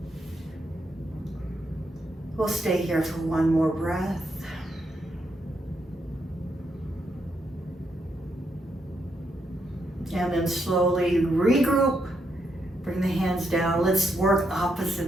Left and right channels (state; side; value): normal; both; correlation 0.79